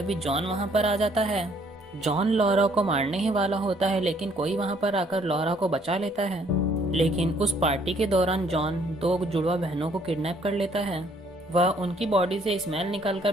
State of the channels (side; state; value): both; normal; correlation 0.64